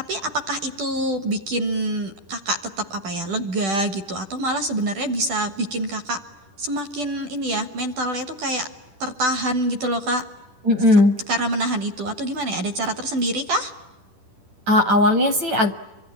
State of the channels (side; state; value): left; late; 10 ms